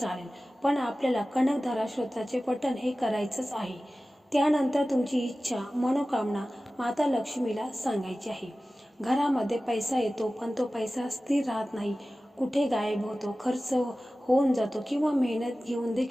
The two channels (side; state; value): both; normal; correlation 0.96